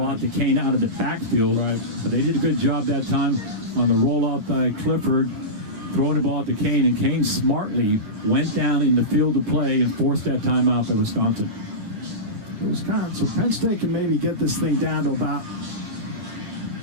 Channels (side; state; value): left; late; 9.8 ms